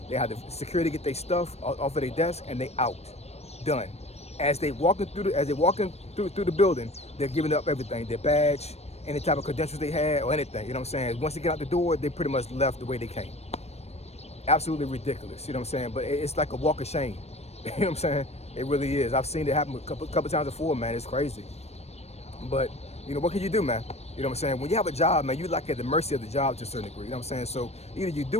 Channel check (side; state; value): right; late; 0.31 ms